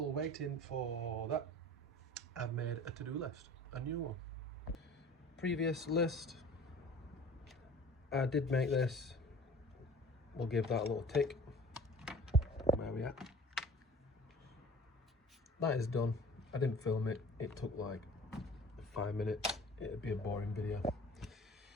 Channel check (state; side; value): normal; both; correlation 0.44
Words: waiting for that, I've made a to-do list, a new one. Previous list, I did make this. We'll give that a little tick. Where are we at? That is done. I didn't film it. It took like 5 minutes. It'd be a boring video.